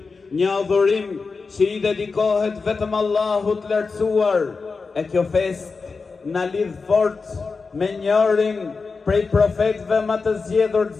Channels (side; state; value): right; quieter; 4.5 dB